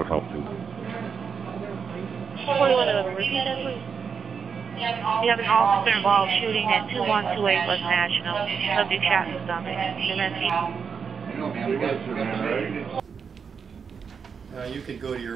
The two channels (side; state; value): left; quieter; 6.2 dB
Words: help too. 2111, repeat that please. You have an officer-involved shooting at 2128 West National. Subject shot in the stomach. You can go to